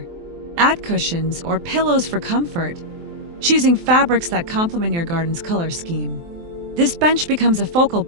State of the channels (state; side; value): late; left; 23 ms